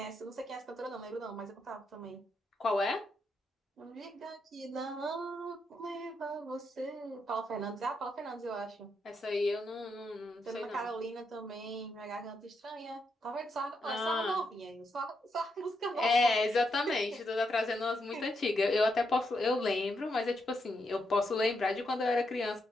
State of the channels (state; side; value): normal; both; correlation 0.81